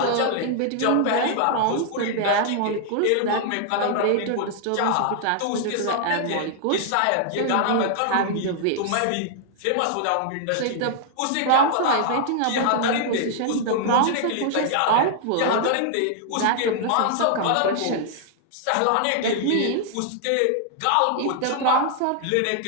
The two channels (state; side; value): different; both; correlation -0.01